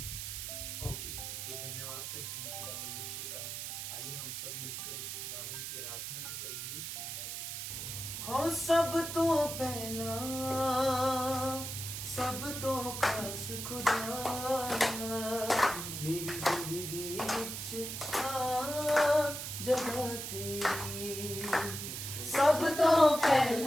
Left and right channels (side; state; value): right; noise; hiss, 6 dB below the sound